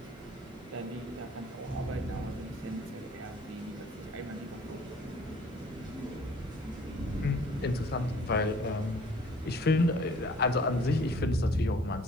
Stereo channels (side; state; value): both; normal; correlation 0.54